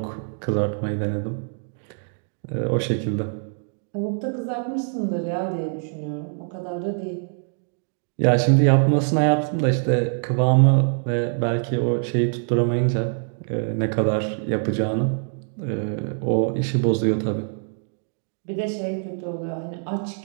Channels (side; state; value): left; silent; digital silence